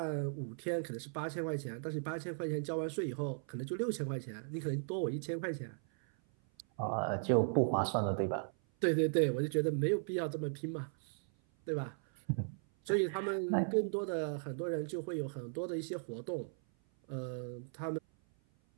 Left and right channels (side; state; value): left; silent; 53 dB below the other